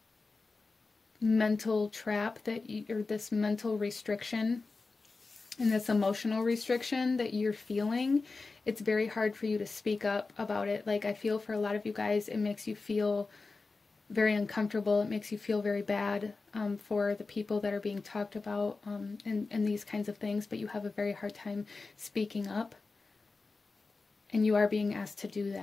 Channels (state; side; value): quieter; right; 3.9 dB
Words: mental trap that or this mental restriction and this emotional restriction that you're feeling, it's very hard for you to speak up about it. Like, I feel for a lot of you guys, it makes you feel very uncomfortable. It makes you feel very bad for the people that are being talked about and these kinds of things, but you have a very hard time speaking up. And you are being asked to do